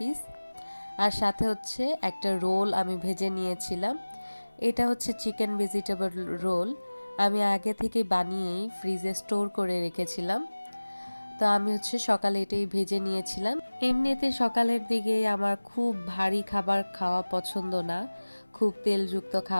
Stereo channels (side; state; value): both; inverted; correlation -1.00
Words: আর সাথে হচ্ছে একটা রোল আমি ভেজে নিয়েছিলাম। এটা হচ্ছে চিকেন ভেজিটেবল রোল। আমি আগে থেকে বানিয়েই ফ্রিজে স্টোর করে রেখেছিলাম। তো আমি হচ্ছে সকালে এটাই ভেজে নিয়েছিলাম। এমনিতে সকালের দিকে আমার খুব ভারী খাবার খাওয়া পছন্দ না। খুব তেলযুক্ত